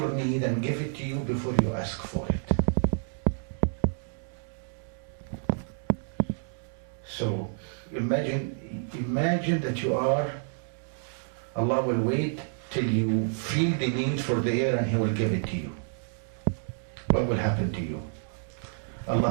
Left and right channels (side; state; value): left; silent; digital silence